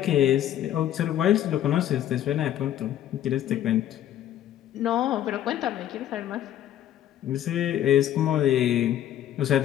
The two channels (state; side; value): quieter; right; 11.6 dB